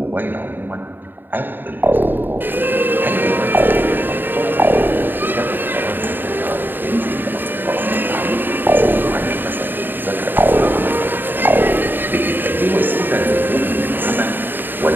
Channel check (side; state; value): left; late; 0.093 ms